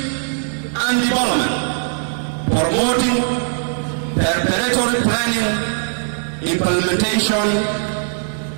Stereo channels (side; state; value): left; silent; 66 dB below the other